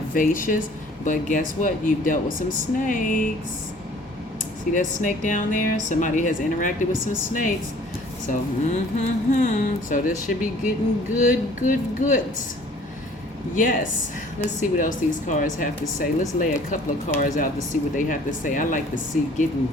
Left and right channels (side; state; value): both; normal; correlation 0.53